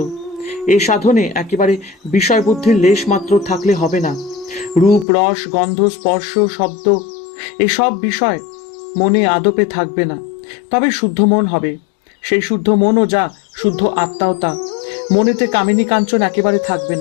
এই সাধনে একেবারে বিষয় বুদ্ধির লেশ মাত্র থাকলে হবে না। রূপ, রস, গন্ধ, স্পর্শ, শব্দ এসব বিষয় মনে আদপে থাকবে না, তবে শুদ্ধ মন হবে। সেই শুদ্ধ মনও যা, শুদ্ধ আত্মাও তা। মনেতে কামিনী কাঞ্চন একেবারে থাকবে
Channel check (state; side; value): drops out; right; at 5.1 s